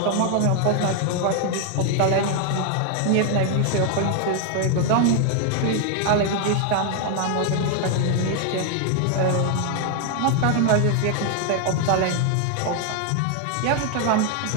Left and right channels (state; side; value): different; both; correlation 0.00